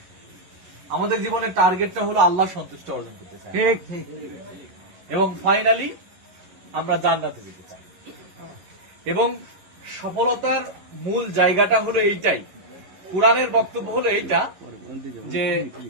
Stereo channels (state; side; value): late; left; 11 ms